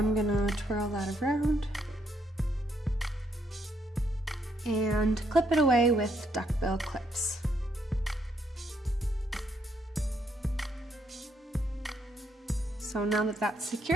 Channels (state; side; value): normal; both; correlation 0.73